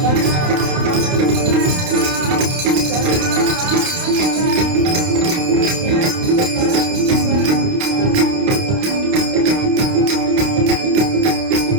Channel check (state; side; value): late; left; 29 ms